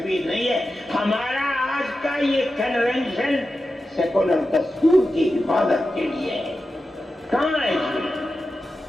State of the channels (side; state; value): both; normal; correlation 0.91